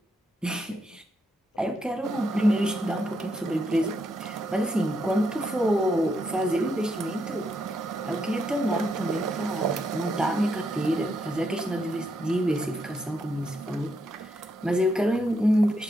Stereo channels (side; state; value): both; normal; correlation 0.79